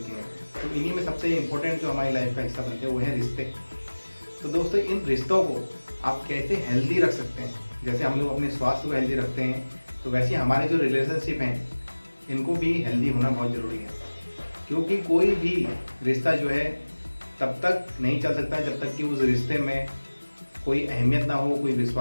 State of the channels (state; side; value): inverted; both; correlation -1.00